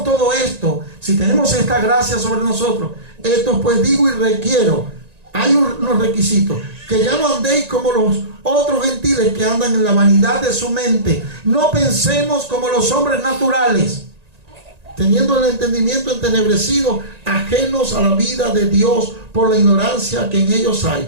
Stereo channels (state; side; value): late; left; 1.9 ms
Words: todo esto, si tenemos esta gracia sobre nosotros, esto pues digo y requiero. Hay unos requisitos: que ya no andéis como los otros gentiles que andan en la vanidad de su mente. No pensemos como los hombres naturales, teniendo el entendimiento entenebrecido, ajenos a la vida de Dios por la ignorancia que en ellos